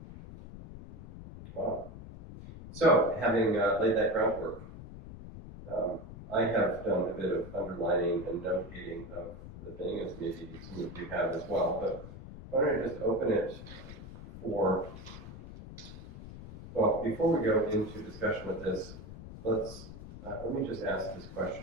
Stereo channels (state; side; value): noise; left; rumble, 13 dB below the sound